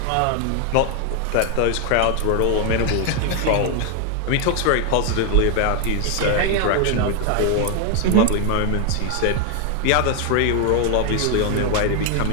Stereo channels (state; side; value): different; both; correlation 0.00